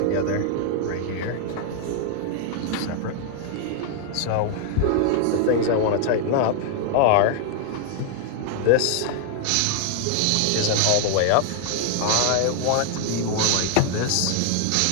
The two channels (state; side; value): different; both; correlation 0.00